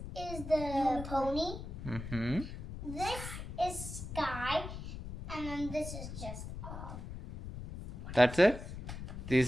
is the pony. This is Sky. And then this is just That's it?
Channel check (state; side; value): noise; left; rumble, 8 dB below the sound